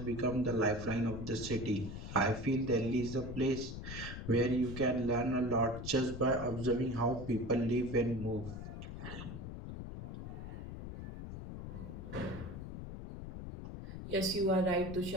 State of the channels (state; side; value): noise; left; rumble, 8 dB below the sound